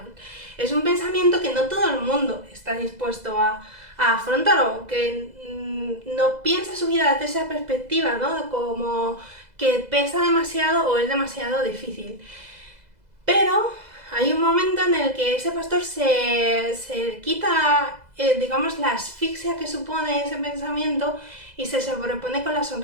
Es un pensamiento que no todo el mundo está dispuesto a afrontar, o que no piensa su vida desde esa perspectiva, ¿no? Como que pesa demasiado o es demasiado difícil. Pero hay un momento en el que ese pastor se quita, digamos, la asfixia que supone ese pensamiento y se sobrepone con la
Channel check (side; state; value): left; late; 2.0 ms